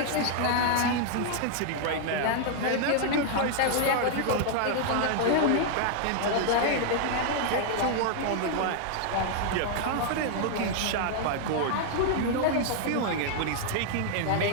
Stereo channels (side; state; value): both; different; correlation 0.00